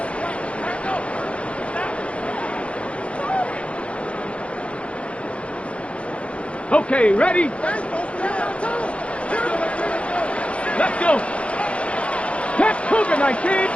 Okay, ready? Let's go. Catch Cougar 19.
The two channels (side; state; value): right; late; 0.061 ms